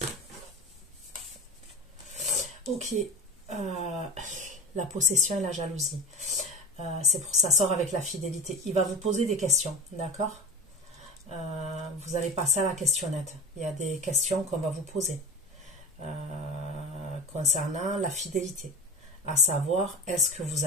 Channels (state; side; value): normal; both; correlation 0.31